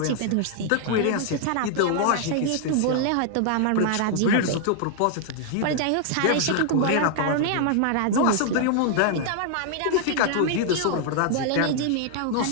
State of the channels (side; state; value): both; different; correlation 0.00